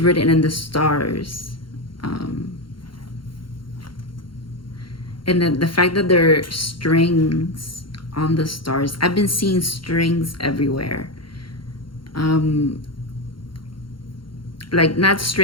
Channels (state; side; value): late; right; 0.73 ms